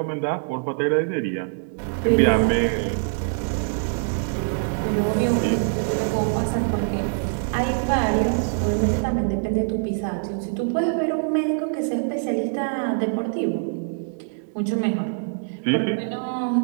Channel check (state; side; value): silent; left; digital silence